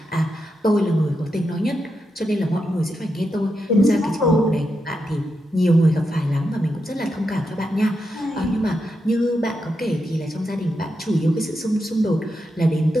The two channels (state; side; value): normal; both; correlation 0.85